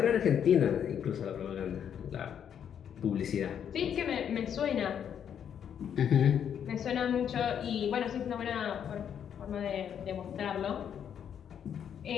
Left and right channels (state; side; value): quieter; right; 8.6 dB